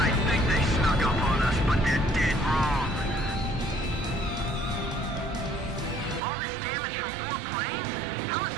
think they snuck up on us, but they're dead wrong. All this damage from 4 planes? How is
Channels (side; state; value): left; drops out; at 6.2 s